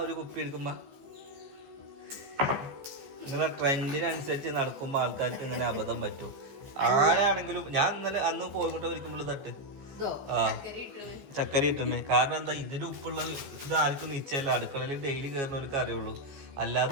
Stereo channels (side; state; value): left; late; 14 ms